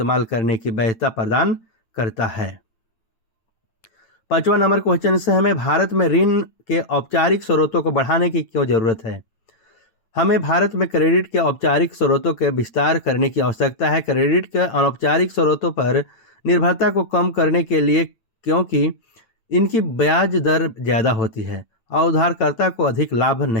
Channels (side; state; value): right; late; 8.9 ms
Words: करने की वैधता प्रदान करता है। 5वां नंबर क्वेश्चन से, हमें भारत में ऋण के औपचारिक स्रोतों को बढ़ाने की क्यों जरूरत है? हमें भारत में क्रेडिट के औपचारिक स्रोतों के विस्तार करने की आवश्यकता है। क्रेडिट के अनौपचारिक स्रोतों पर निर्भरता को कम करने के लिए, क्योंकि इनकी ब्याज दर ज़्यादा होती है और उधारकर्ता को अधिक लाभ